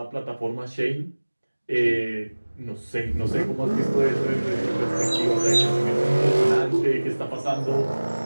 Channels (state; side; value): inverted; both; correlation -1.00